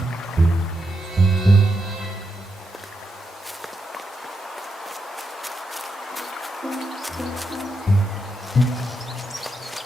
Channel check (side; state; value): both; normal; correlation 0.84